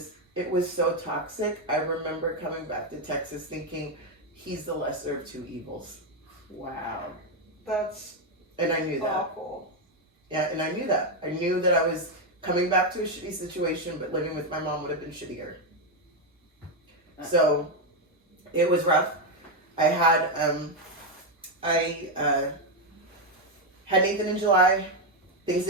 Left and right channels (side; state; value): both; normal; correlation 0.05